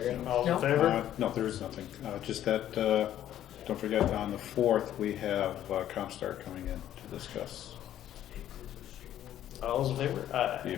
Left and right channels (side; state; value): right; quieter; 11.7 dB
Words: All No. in favor? No, there is nothing. Just that, don't forget, on the 4th, we have Comstar coming in to discuss All those in favor? Aye. the